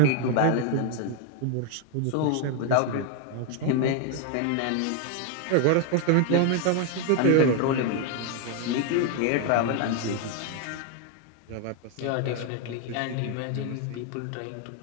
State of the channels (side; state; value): both; different; correlation 0.01